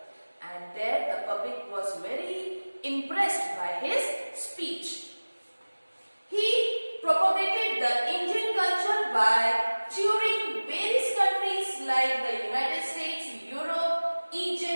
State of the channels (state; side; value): inverted; both; correlation -1.00